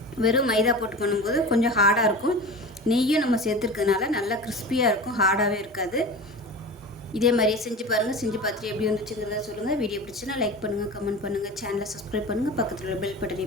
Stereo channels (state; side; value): normal; both; correlation 0.32